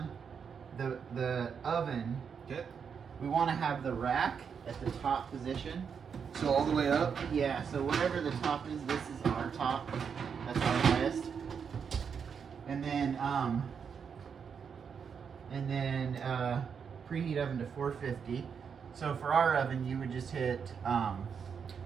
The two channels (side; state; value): left; quieter; 6.7 dB